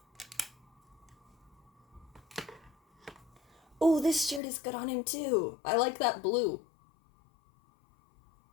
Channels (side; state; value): right; drops out; at 4.4 s